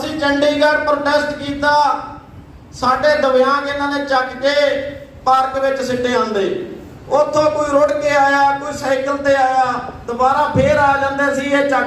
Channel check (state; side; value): identical; both; correlation 1.00